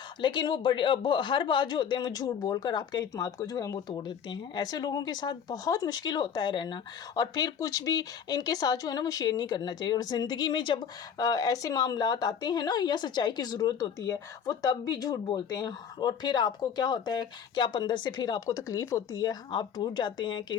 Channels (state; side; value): quieter; right; 7.6 dB